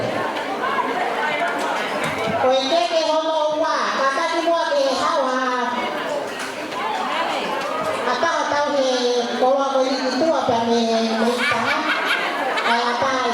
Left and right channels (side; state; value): both; identical; correlation 1.00